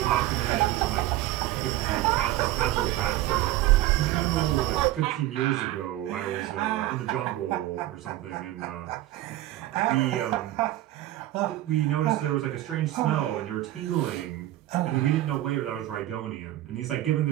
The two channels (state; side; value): quieter; left; 15.0 dB